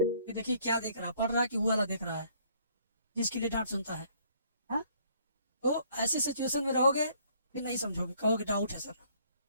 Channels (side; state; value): both; inverted; correlation -0.62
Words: देखिए क्या देख रहा है, पढ़ रहा है कि वो वाला देख रहा है जिसके लिए डांट सुनता है, हाँ? तो ऐसी सिचुएशन में रहोगे फिर नहीं समझोगे, कहोगे डाउट है सर।